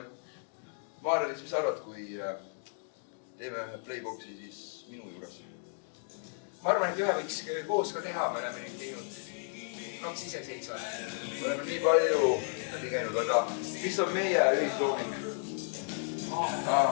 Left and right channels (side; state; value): right; silent; 55 dB below the other